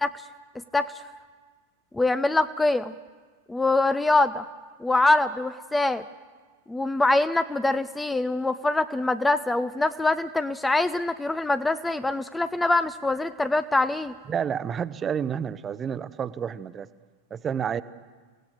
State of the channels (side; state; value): both; normal; correlation 0.88